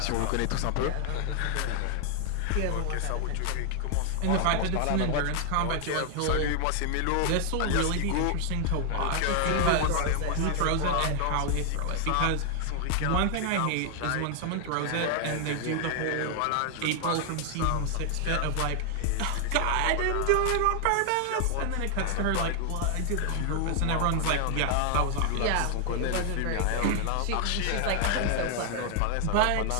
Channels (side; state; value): both; different; correlation 0.00